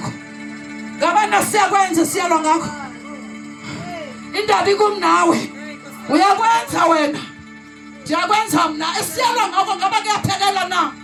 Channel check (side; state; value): both; identical; correlation 1.00